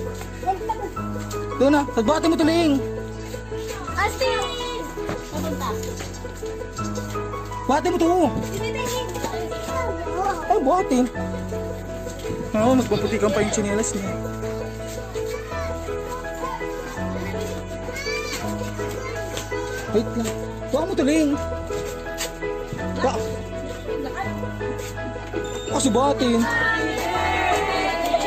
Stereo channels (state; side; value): noise; right; hum, 28 dB below the sound